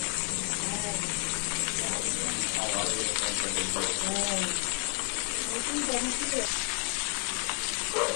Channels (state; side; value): quieter; right; 33.1 dB